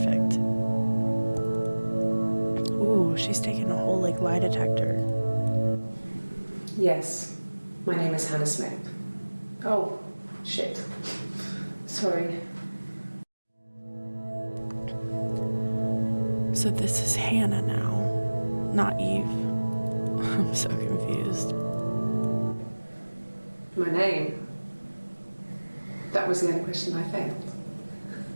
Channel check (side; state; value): both; inverted; correlation -1.00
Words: Ooh, she's taking a whole lie detector. Yes, my name is Hannah Smith. Oh, shit. Sorry. So this is Hannah now, not Eve. I'm so confused. My name? That was the only question I failed.